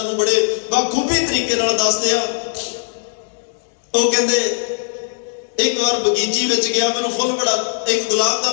ਨੂੰ ਬੜੇ ਬਾਖੂਬੀ ਤਰੀਕੇ ਨਾਲ ਦੱਸਦੇ ਆ। ਉਹ ਕਹਿੰਦੇ ਇੱਕ ਵਾਰ ਬਗੀਚੀ ਵਿੱਚ ਗਿਆ, ਮੈਨੂੰ ਫੁੱਲ ਬੜਾ, ਇੱਕ ਗੁਲਾਬ ਦਾ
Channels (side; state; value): right; silent; digital silence